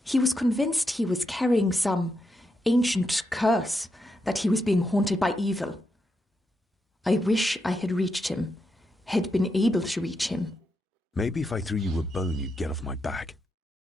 He was convinced he was carrying some ancient curse, that he was being haunted by evil. I wish I had reached him, had been able to reach him. Maybe if I threw you a bone, you'd get off my back.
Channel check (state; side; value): normal; both; correlation 0.83